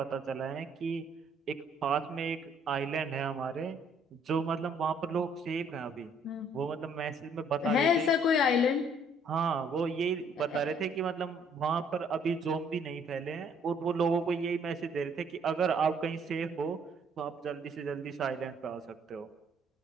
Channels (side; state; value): both; normal; correlation 0.63